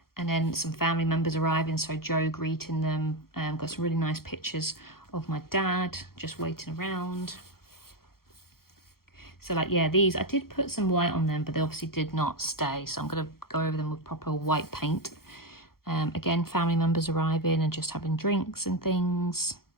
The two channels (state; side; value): late; right; 0.94 ms